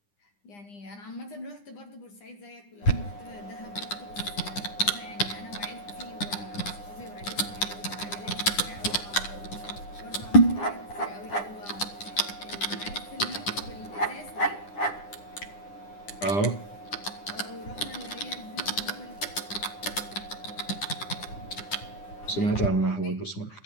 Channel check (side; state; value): right; late; 9.9 ms